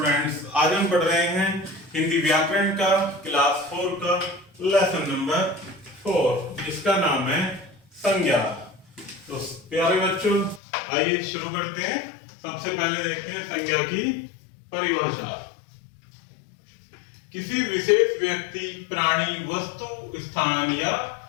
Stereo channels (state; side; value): drops out; right; at 10.6 s